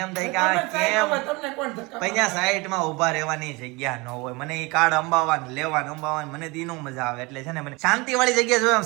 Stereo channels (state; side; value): quieter; left; 25.4 dB